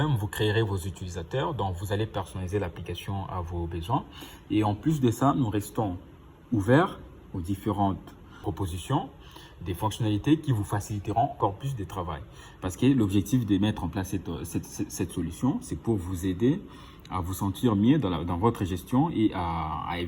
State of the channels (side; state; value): both; identical; correlation 1.00